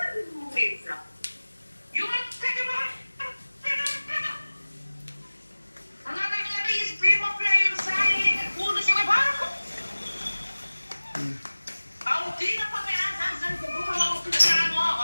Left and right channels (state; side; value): inverted; both; correlation -1.00